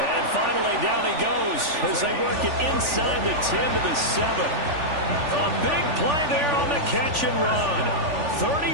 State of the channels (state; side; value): late; left; 3.4 ms